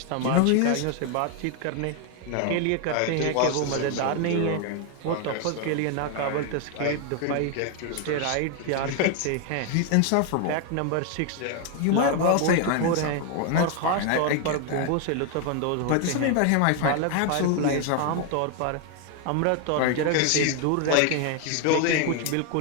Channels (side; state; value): both; different; correlation 0.01